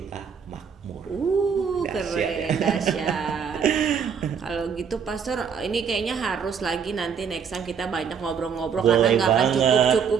makmur. Dahsyat Keren, ya. dahsyat. Kalau gitu Pastor, ini kayaknya harus lagi nanti next time kita banyak ngobrol-ngobrol karena Boleh nggak akan banget, cukup,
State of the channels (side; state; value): left; quieter; 6.8 dB